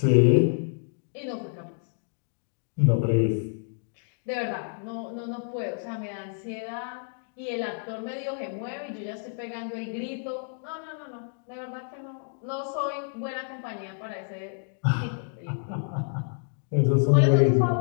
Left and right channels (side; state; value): right; silent; digital silence